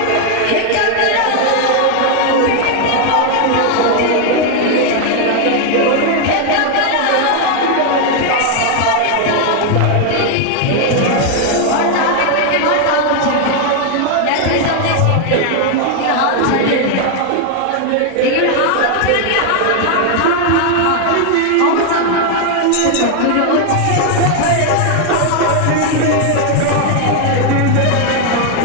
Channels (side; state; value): both; different; correlation 0.00